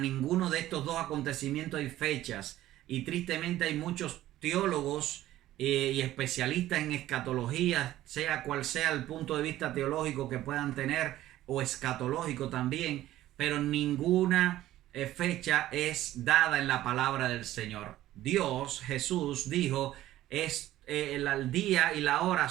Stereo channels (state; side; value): quieter; left; 14.4 dB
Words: de estos dos acontecimientos hay fechas. Y tristemente hay muchos teólogos y especialistas en escatología, sea cual sea el punto de vista teológico que puedan tener, o escatológico también, pero ninguna fecha es dada en la palabra del Señor. Dios, Jesús, dijo, el día y la hora